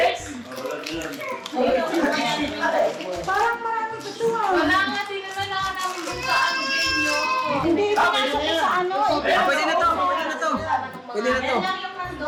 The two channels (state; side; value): identical; both; correlation 1.00